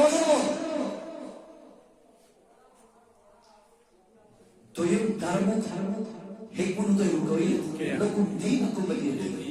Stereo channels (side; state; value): both; identical; correlation 1.00